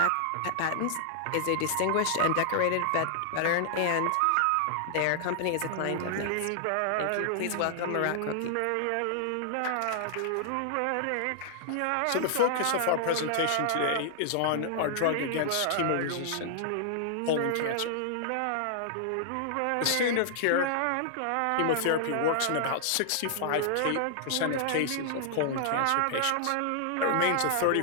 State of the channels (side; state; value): both; different; correlation -0.01